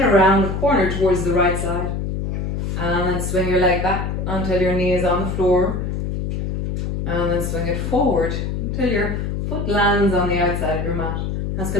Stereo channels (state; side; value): noise; left; hum, 2 dB below the sound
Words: around the corner towards the right side. And then swing your leg back until your knee is on the floor. And then swing it forward until your foot lands on the outside of your mat. That's